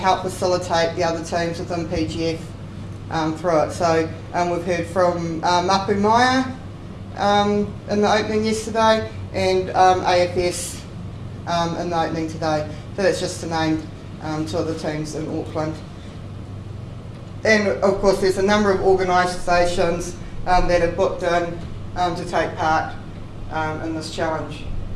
facilitate the other teams within PGF through it. So we've heard from Mapu Maya in the opening yesterday and AFS in the opening today. So that's just to name two of the teams in Auckland. And of course there's a number of organisations that have booked in to take part in this challenge.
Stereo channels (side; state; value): both; identical; correlation 1.00